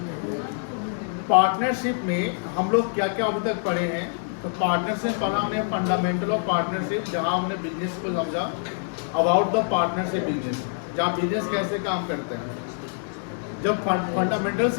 पार्टनरशिप में हम लोग क्या क्या अभी तक पढ़े हैं। तो पार्टनरशिप पढ़ा हमने फंडामेंटल ऑफ पार्टनरशिप, जहाँ हमने बिजनेस को समझा, अबाउट द पार्टनरशिप बिजनेस, जहाँ बिजनेस कैसे काम करते हैं। जब फंडामेंटल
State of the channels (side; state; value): right; silent; digital silence